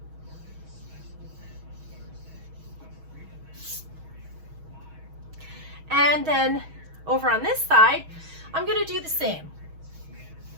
And then over on this side, I'm going to do the same.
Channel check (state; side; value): late; left; 6.3 ms